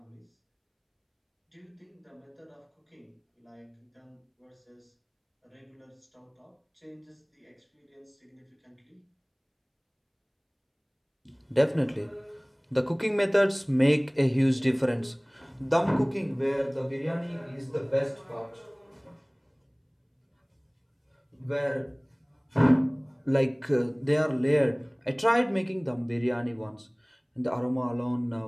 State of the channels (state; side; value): identical; both; correlation 1.00